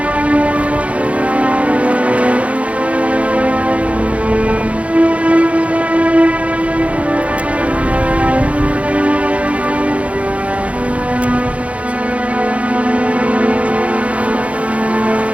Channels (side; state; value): left; late; 0.064 ms